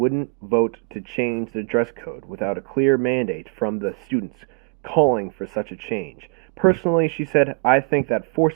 vote to change the dress code without a clear mandate from the students calling for such a change. Personally, she said, I think that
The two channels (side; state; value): left; quieter; 36.6 dB